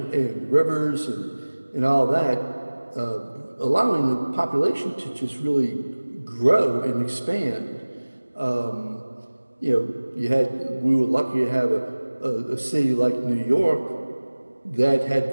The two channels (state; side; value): inverted; both; correlation -1.00